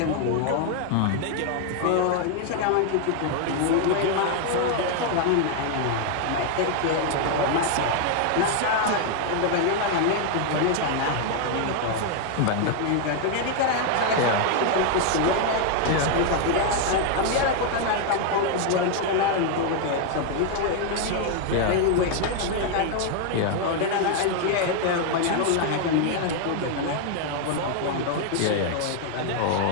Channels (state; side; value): different; both; correlation 0.00